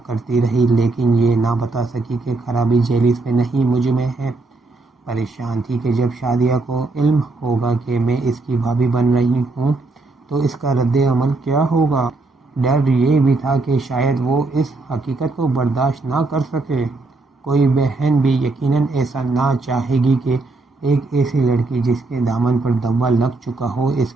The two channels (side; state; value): left; quieter; 3.4 dB